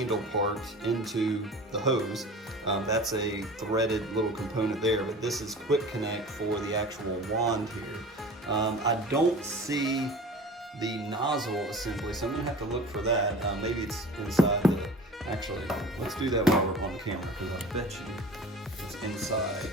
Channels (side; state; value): both; normal; correlation 0.39